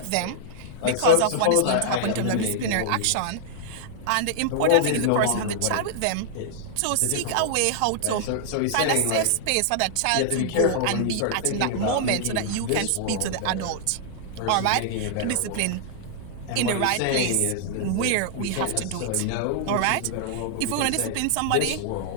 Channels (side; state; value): both; different; correlation -0.01